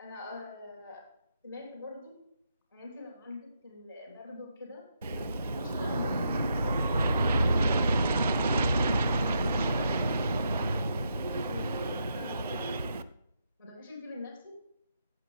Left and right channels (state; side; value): inverted; both; correlation -0.80